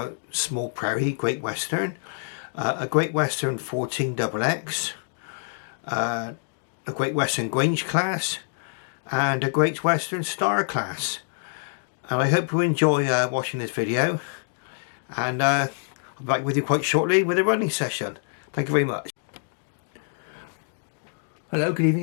Small Prairie Great Western, a Great Western 14XX, a Great Western Grange class, and a Great Western Star class. And I hope you enjoy watching this video, and I'll be back with you quite shortly with a running session. Thank you very much. Hello, good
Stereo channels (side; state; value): right; silent; digital silence